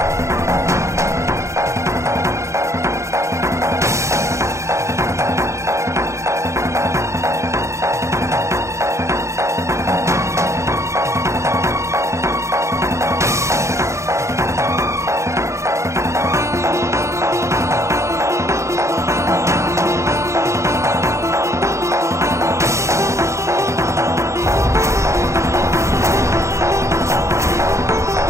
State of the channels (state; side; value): late; left; 0.14 ms